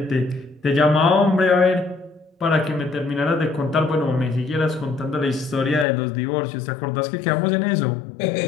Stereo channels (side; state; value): right; drops out; at 5.9 s